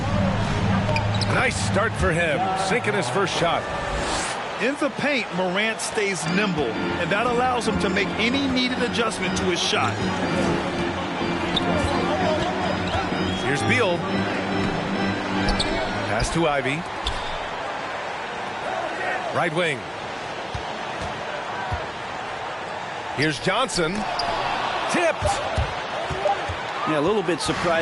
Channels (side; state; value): both; identical; correlation 1.00